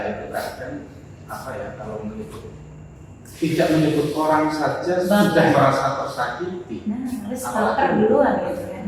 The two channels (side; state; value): both; identical; correlation 1.00